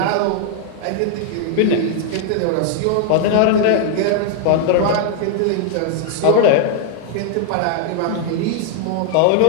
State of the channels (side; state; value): both; different; correlation 0.00